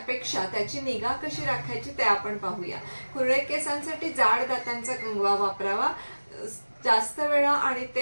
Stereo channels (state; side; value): inverted; both; correlation -1.00